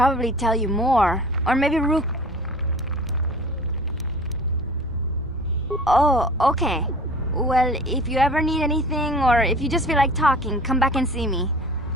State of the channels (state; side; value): normal; both; correlation 0.43